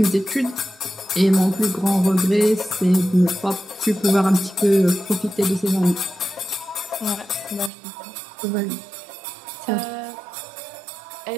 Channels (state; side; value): drops out; left; at 7.7 s